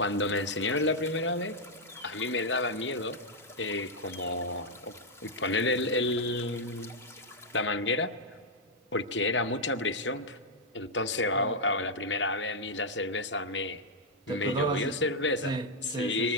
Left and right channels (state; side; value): normal; both; correlation -0.03